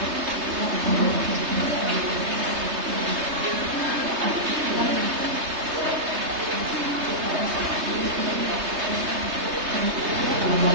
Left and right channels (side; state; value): left; late; 3.3 ms